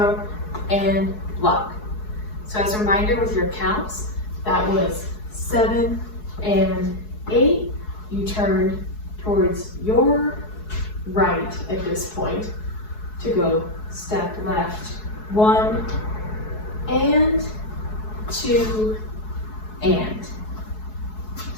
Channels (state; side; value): late; right; 4.7 ms